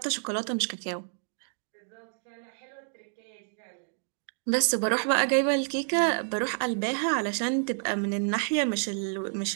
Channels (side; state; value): left; silent; digital silence